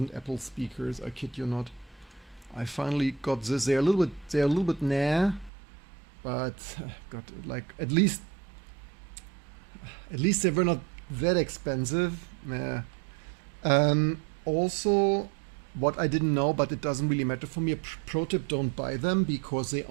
Apple speakers. I kid you not. I finally got this. They're a little bit nah, but got like at least they were not that expensive. Nah. Also, what I didn't know, but it doesn't really matter for me. Pro tip: don't buy them because they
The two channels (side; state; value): left; drops out; at 5.5 s